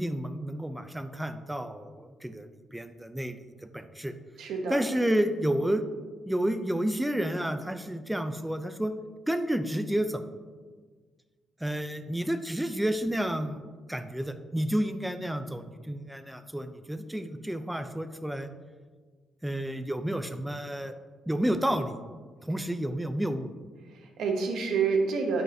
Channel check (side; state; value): both; normal; correlation 0.90